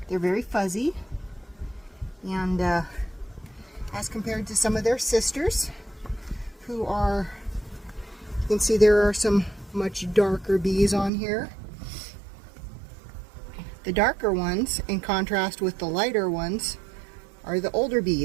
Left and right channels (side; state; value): left; drops out; at 11.1 s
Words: They're very fuzzy, and as compared to some of their sisters, who are, you can see there are some much darker bees on here. The darker ones, in contrast with the lighter ones, are the older